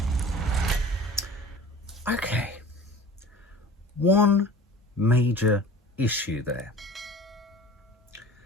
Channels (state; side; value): normal; both; correlation 0.41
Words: Okay, one major issue there.